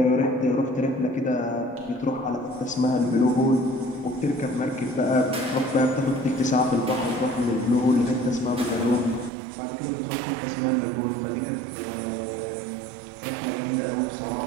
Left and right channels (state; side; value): drops out; left; at 9.3 s